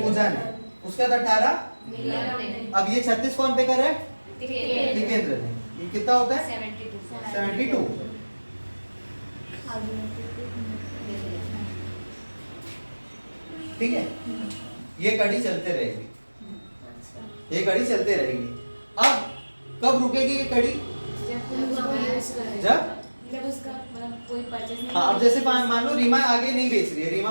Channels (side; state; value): both; inverted; correlation -1.00